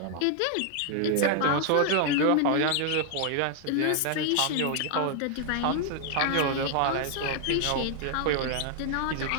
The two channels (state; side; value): different; both; correlation 0.00